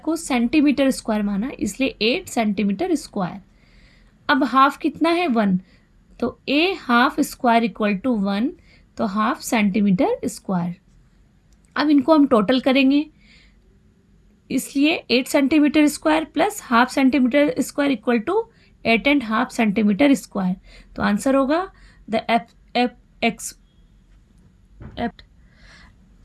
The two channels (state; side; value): identical; both; correlation 1.00